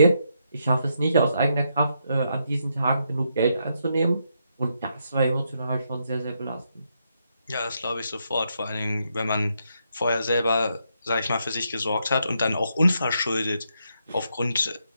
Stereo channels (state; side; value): inverted; both; correlation -0.79